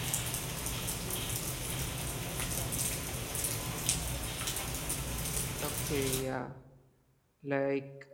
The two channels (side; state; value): both; identical; correlation 1.00